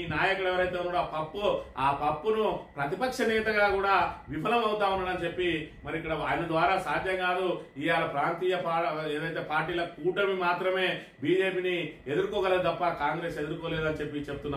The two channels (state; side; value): identical; both; correlation 1.00